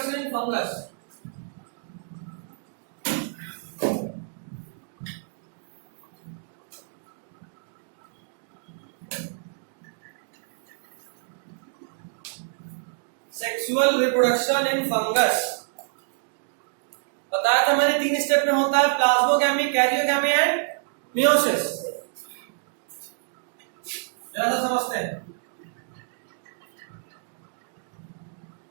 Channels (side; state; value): left; silent; digital silence